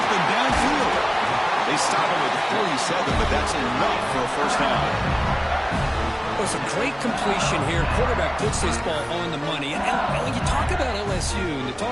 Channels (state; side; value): identical; both; correlation 1.00